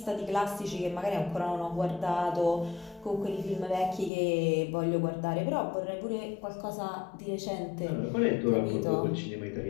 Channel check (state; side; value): drops out; right; at 4.1 s